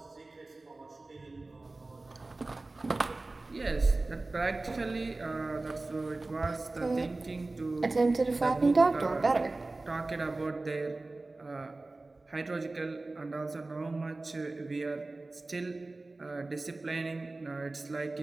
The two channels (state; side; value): quieter; left; 3.2 dB